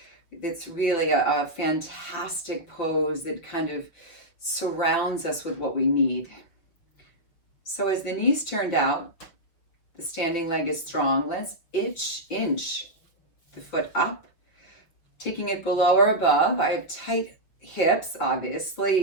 it's really a fantastic pose that kind of surrounds us with what we need. So as the knees turned out, the standing leg is strong. Let's inch the foot up, taking it below or above. I have tight hips, obviously,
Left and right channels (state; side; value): late; right; 6.1 ms